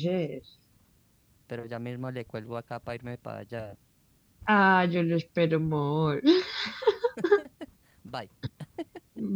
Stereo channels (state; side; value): identical; both; correlation 1.00